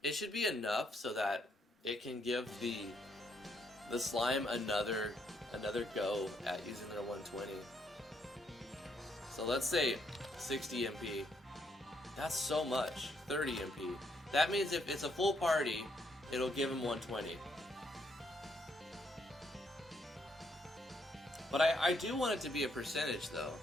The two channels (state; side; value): normal; both; correlation 0.74